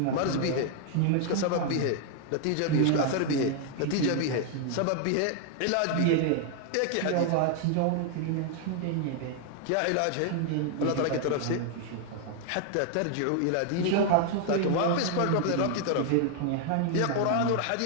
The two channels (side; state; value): both; different; correlation 0.00